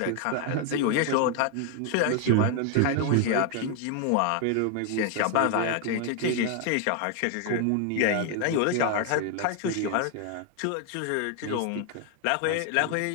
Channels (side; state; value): both; different; correlation 0.01